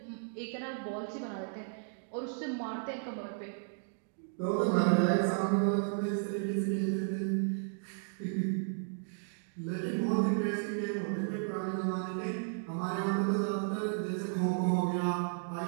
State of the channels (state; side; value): silent; left; digital silence